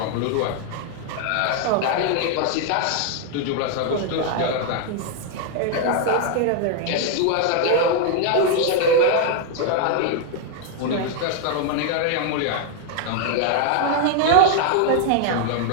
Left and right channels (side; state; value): both; different; correlation 0.00